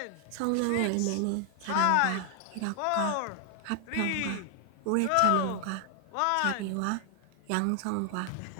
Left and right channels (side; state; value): both; different; correlation 0.00